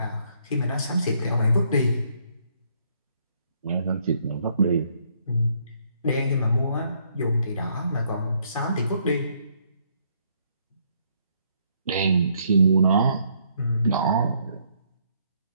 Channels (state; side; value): inverted; both; correlation -0.69